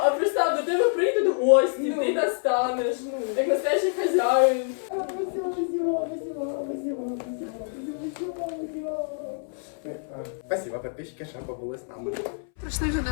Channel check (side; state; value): right; silent; 61 dB below the other